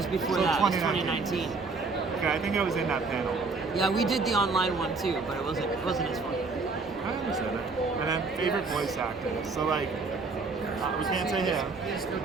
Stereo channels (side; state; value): left; quieter; 4.1 dB